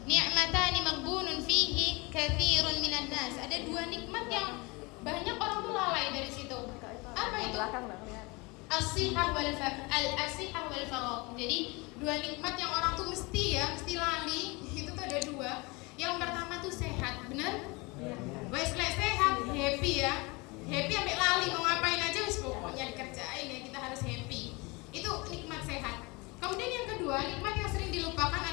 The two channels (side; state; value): right; quieter; 26.2 dB